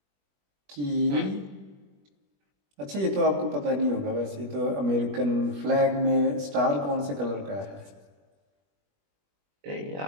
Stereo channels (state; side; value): late; left; 21 ms